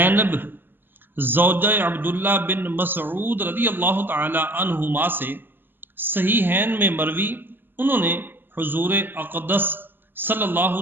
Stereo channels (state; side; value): late; left; 0.095 ms